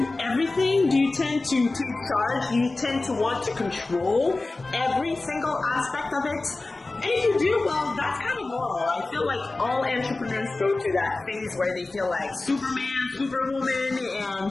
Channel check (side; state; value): right; quieter; 3.2 dB